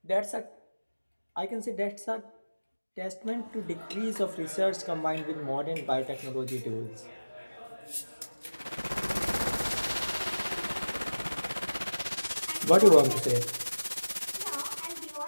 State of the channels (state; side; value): inverted; both; correlation -1.00